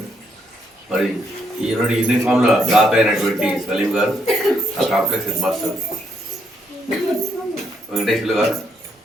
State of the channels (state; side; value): normal; both; correlation 0.75